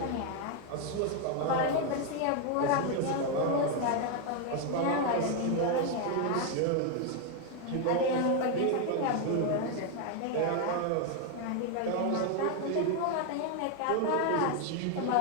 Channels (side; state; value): both; different; correlation 0.01